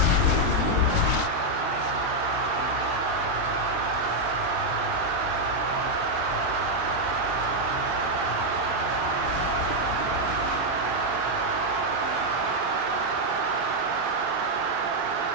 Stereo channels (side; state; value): left; late; 23 ms